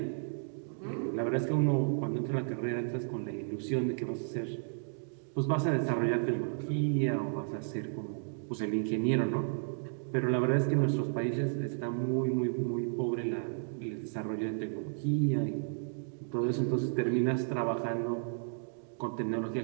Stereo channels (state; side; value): silent; left; digital silence